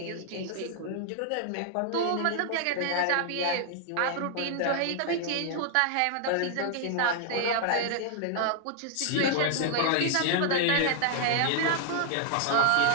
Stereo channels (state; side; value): different; both; correlation 0.00